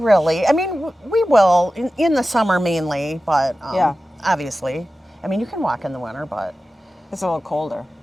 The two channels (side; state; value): both; normal; correlation 0.95